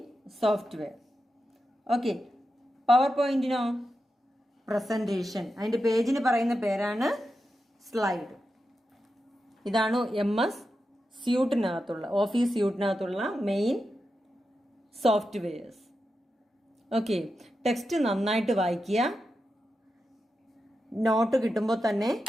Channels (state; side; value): normal; both; correlation 0.89